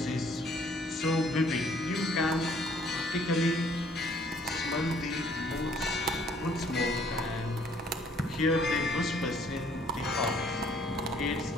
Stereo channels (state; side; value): normal; both; correlation 0.61